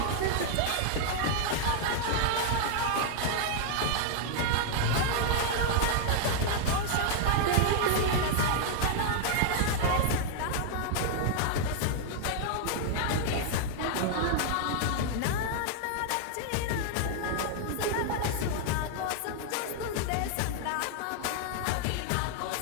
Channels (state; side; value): different; both; correlation 0.00